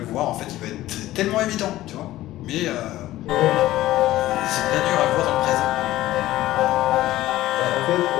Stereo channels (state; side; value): quieter; right; 15.5 dB